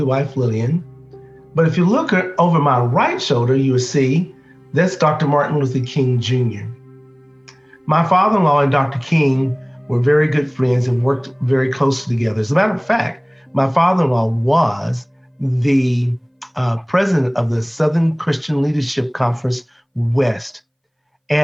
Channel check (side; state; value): both; identical; correlation 1.00